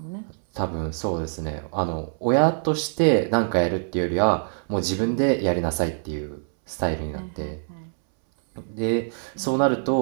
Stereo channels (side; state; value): left; silent; 62 dB below the other